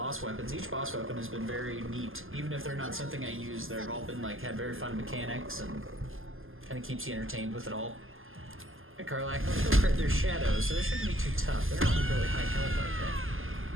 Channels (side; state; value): left; late; 0.59 ms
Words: weapons. Each boss weapon has been very neat. Even if they're not something I use, they've all been like had very fun mechanics and kind of keeps you entertained with it all. Hey, Karlak, let's go crit. There's shadows, so they shouldn't be too tough. They're not really high health like that.